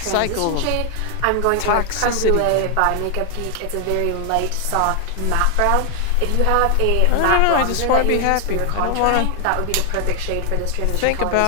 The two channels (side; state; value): both; different; correlation 0.00